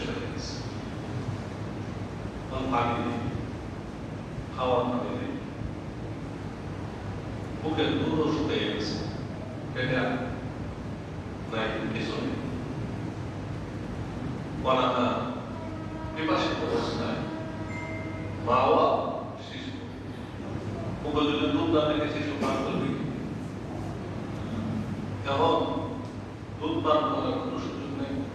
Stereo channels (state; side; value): identical; both; correlation 1.00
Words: হয়ে গেছে। পানি নেই, খাওয়ার পানি নেই, বুকের দুধও শুকিয়ে গেছে, পেটে নাই, কিছু নেই। অনাথা বিপাশিত অবস্থায় মা-বাবা শিশু, বুকে যদি দুধ না থেকে শিশু পান করবে, এবং দুধ পান করার কোনো সুযোগ নেই,